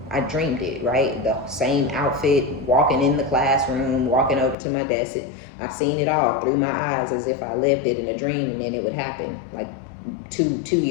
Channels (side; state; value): right; drops out; at 4.5 s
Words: I dreamed it, right? The same outfit, walking in the classroom, walking over to my desk. I've seen it all through my eyes as if I lived it in a dream, and then it would happen like two